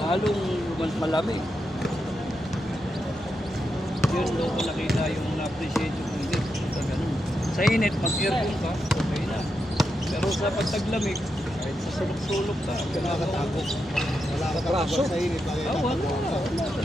halong malamig. Yun doon ko nakita yung na-appreciate yung init. Ganun. Sa init, pag-aircon ka, okay na. Pero sa pagtaglamig, kahit sa sulok-sulok ka, Nakakatakot. Wala ka talaga sa init. wala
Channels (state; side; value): normal; both; correlation 0.85